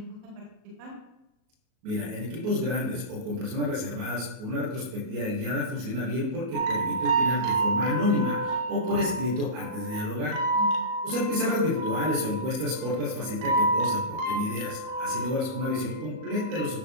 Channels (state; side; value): late; left; 37 ms